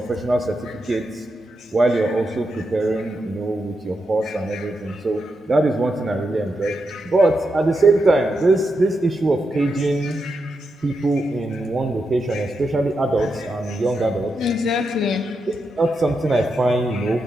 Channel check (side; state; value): both; normal; correlation 0.85